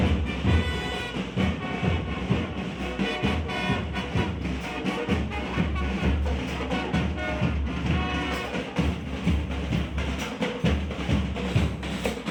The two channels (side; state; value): both; identical; correlation 1.00